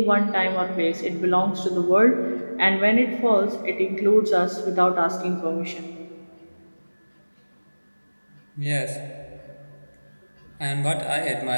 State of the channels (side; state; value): both; inverted; correlation -1.00